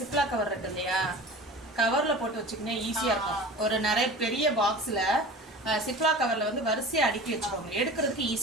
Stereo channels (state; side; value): normal; both; correlation 0.37